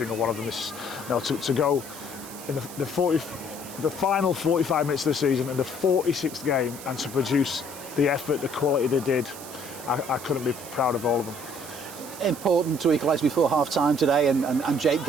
one of them. To go in the final 45 minutes of the season and the 46th game and to produce the effort, the quality they did, I couldn't be proud of all of them. Important to equalise before half-time today, and Jake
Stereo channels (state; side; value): noise; right; hiss, 14 dB below the sound